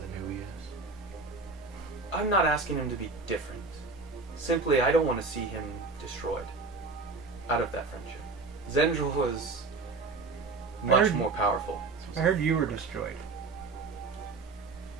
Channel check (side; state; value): left; quieter; 3.9 dB